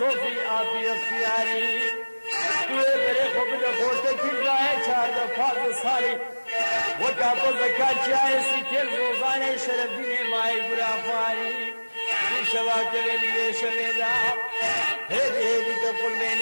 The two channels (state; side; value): inverted; both; correlation -1.00